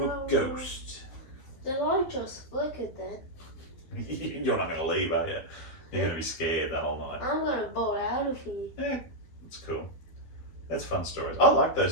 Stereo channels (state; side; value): late; right; 12 ms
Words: a ghost. The light just flickered then. You're not going to leave, are you? You're going to be scared the whole night. I'm going to bolt out of here. Yeah, it's cool. That's fun stories. I like